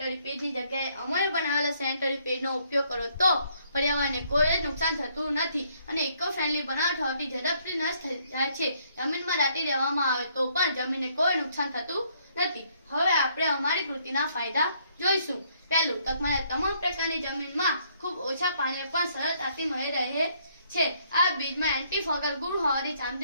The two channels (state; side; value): inverted; both; correlation -0.68